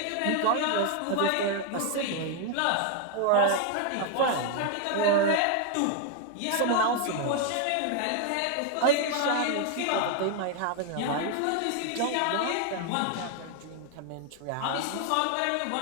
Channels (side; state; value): both; different; correlation 0.00